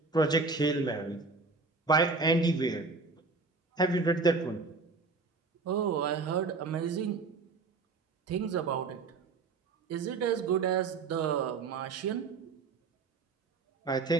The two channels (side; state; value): left; quieter; 4.1 dB